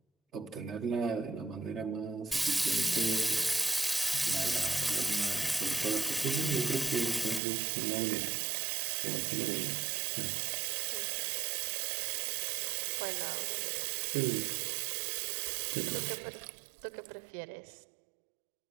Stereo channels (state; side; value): drops out; left; at 7.4 s